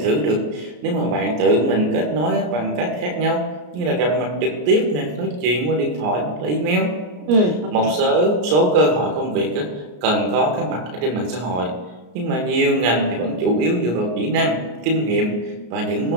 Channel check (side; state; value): left; late; 33 ms